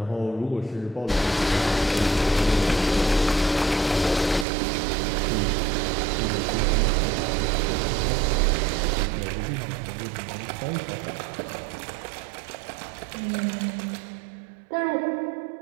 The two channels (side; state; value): left; drops out; at 4.5 s